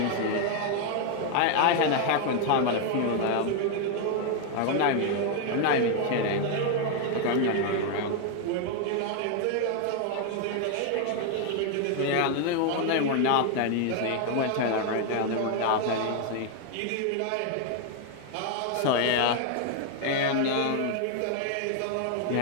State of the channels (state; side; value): different; both; correlation 0.00